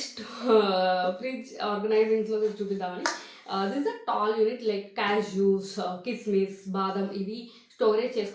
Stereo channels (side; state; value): both; identical; correlation 1.00